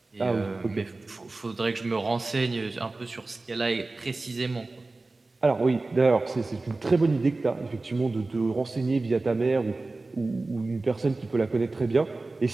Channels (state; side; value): quieter; left; 3.3 dB